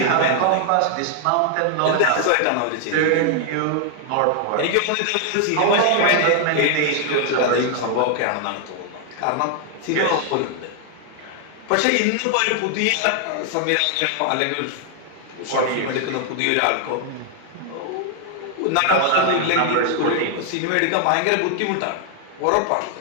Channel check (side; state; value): both; different; correlation 0.00